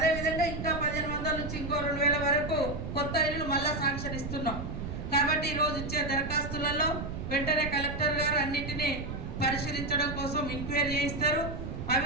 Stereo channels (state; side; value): noise; right; rumble, 6 dB below the sound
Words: ఇంకా 1500 నుంచి ఇంకో 2000 వరకు కొత్త ఇల్లులు మళ్ళా శాంక్షన్ ఇస్తున్నాం. కాబట్టి ఈరోజు ఇచ్చే దరఖాస్తులలో వెంటనే కలెక్టర్ గారు అన్నిటినీ పరిశీలించడం కోసం ఎంక్వైరీ చేయిస్తారు. అవి